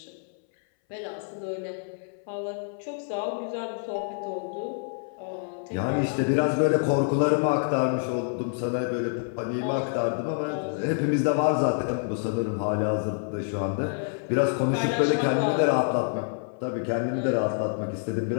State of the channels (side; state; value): right; silent; 60 dB below the other